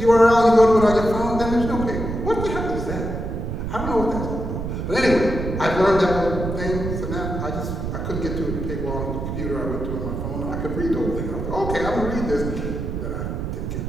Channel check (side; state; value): right; noise; rumble, 4 dB below the sound